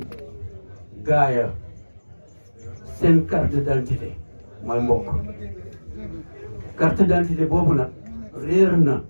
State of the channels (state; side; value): inverted; both; correlation -1.00